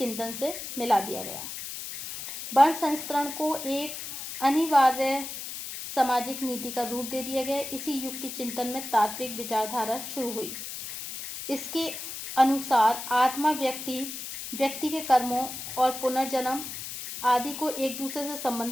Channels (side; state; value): left; noise; hiss, 8 dB below the sound